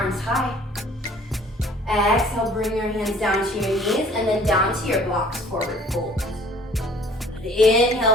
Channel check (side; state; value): both; normal; correlation 0.53